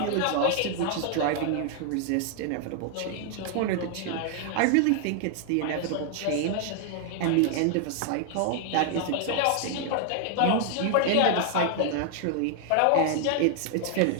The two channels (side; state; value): both; different; correlation 0.00